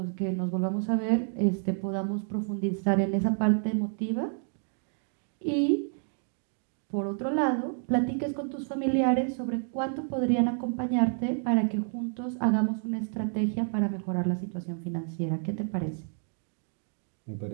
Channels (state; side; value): silent; left; 58 dB below the other